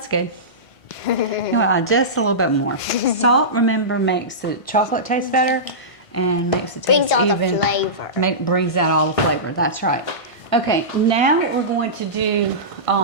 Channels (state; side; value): late; right; 1.5 ms